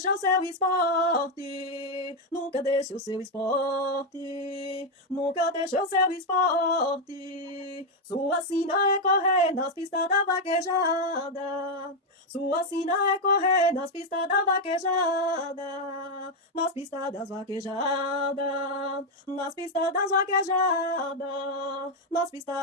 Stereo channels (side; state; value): both; normal; correlation 0.03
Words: o seu esporte. Nunca deixa o seu esporte. Nunca deixa o seu esporte. Sua sina é correr nas pistas da vaquejada. Sua sina é correr nas pistas da vaquejada, nas pistas das vaquejadas, nas pistas das vaquejadas, nas